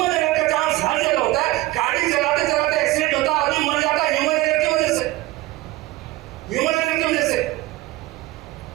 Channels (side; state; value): left; quieter; 18.4 dB